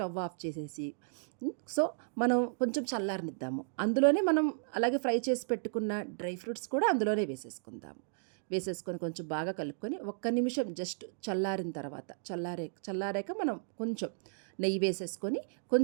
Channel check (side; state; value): left; silent; digital silence